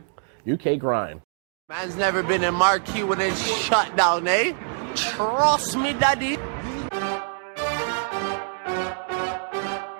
UK grime. Man's never been in marquee when it's shut down, eh? Trust me, daddy.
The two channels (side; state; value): left; silent; digital silence